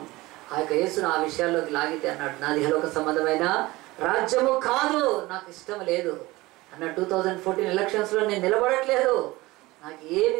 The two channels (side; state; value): left; quieter; 20.1 dB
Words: ఆ యొక్క యేసును ఆ విషయాల్లోకి లాగితే అన్నాడు, నాది ఇహలోక సంబంధమైన రాజ్యము కాదు, నాకు ఇష్టం లేదు అన్నాడు. 2014 ఎలక్షన్స్లో నేను నిలబడట్లేదు, నాకు